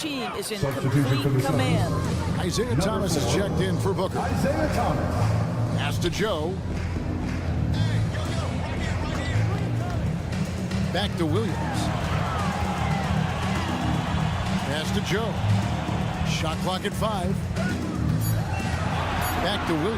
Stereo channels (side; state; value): both; identical; correlation 1.00